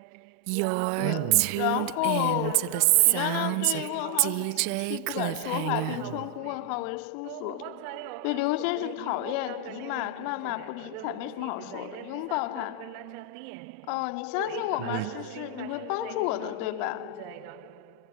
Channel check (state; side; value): different; both; correlation 0.00